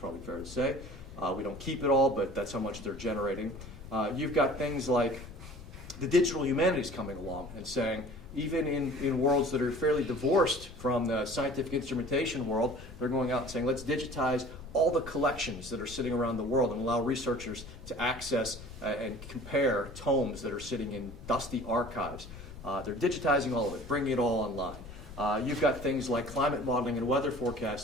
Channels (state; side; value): noise; left; rumble, 15 dB below the sound